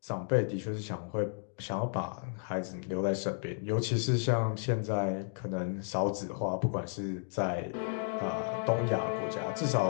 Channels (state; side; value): silent; right; digital silence